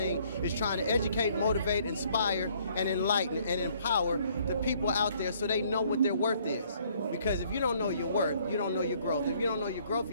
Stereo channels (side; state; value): both; inverted; correlation -0.63